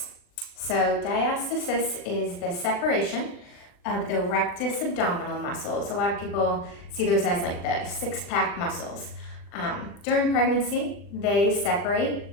So diastasis is the separation of the rectus abdominal muscles. A lot of people see those as like the six-pack muscles. During pregnancy, they separate.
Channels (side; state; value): right; late; 39 ms